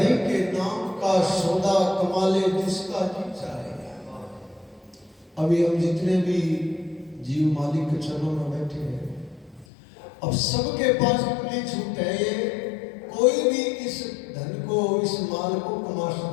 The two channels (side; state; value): right; drops out; at 9.7 s